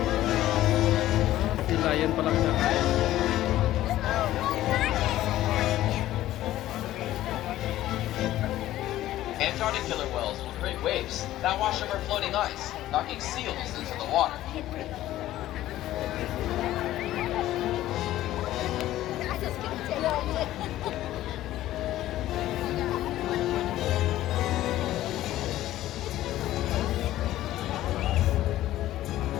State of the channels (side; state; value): right; quieter; 14.4 dB